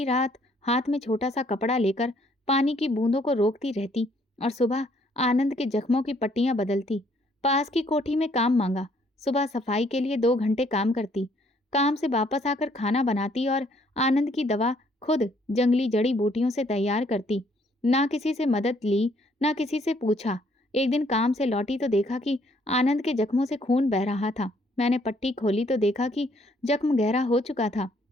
रात हाथ में छोटा सा कपड़ा लेकर पानी की बूंदों को रोकती रहती और सुबह आनंद के जख्मों की पट्टियां बदलती। पास की कोठी में काम मांगा। सुबह सफाई के लिए 2 घंटे काम करती। काम से वापस आकर खाना बनाती और आनंद की दवा खुद जंगली जड़ी बूटियों से तैयार करती। ना किसी से मदद ली, ना किसी से पूछा। एक दिन काम से लौटी तो देखा कि आनंद के जख्मों से खून बह रहा था। मैंने पट्टी खोली तो देखा कि जख्म गहरा हो चुका था।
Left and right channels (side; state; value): both; normal; correlation 0.66